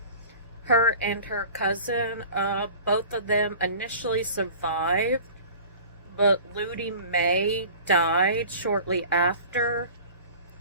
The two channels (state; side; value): inverted; both; correlation -0.42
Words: her and her cousin. Both of them initially survived, but Ludi May died shortly after.